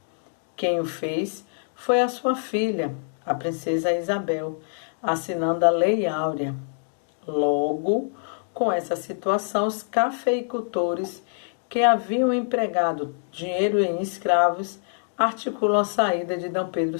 quem o fez foi a sua filha, a princesa Isabel, assinando a Lei Áurea. Logo, com essa situação, os cafeicultores que haviam empregado dinheiro em escravos articulam a saída de D. Pedro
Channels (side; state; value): right; silent; digital silence